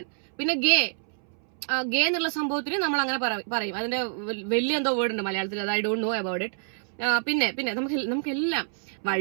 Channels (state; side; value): silent; left; 60 dB below the other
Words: പിന്നെ ഗേ എന്നുള്ള സംഭവത്തിന് നമ്മൾ അങ്ങനെ പറയും. അതിന്റെ വലിയ എന്തോ വേർഡ് ഉണ്ട് മലയാളത്തിൽ, അത് I don't know about it. പിന്നെ നമുക്കെല്ലാം